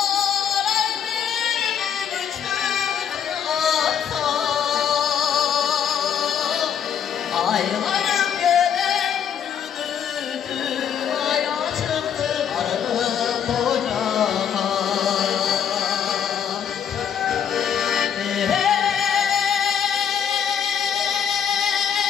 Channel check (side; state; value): right; quieter; 8.3 dB